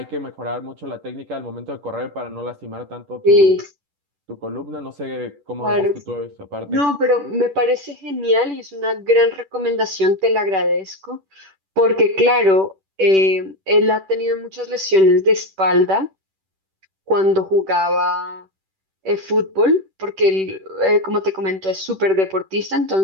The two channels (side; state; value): left; late; 10 ms